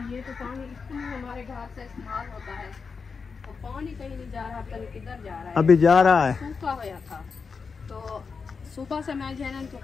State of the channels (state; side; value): quieter; right; 5.2 dB